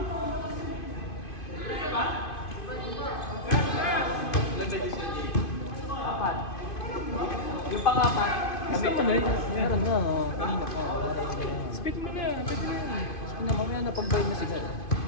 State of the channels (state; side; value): late; right; 2.5 ms